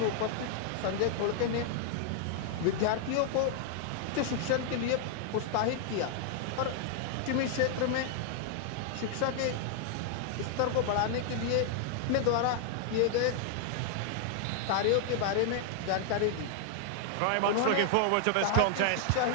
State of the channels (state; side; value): different; both; correlation 0.00